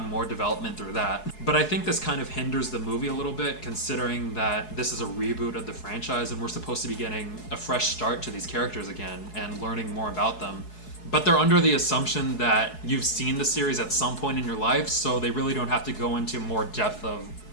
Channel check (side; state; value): right; late; 4.7 ms